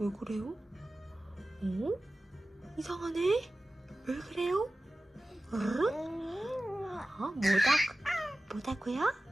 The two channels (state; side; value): normal; both; correlation 0.96